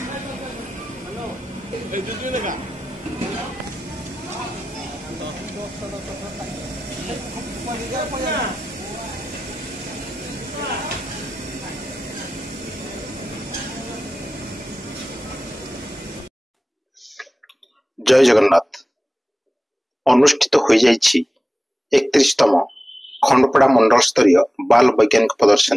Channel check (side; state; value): both; normal; correlation 0.95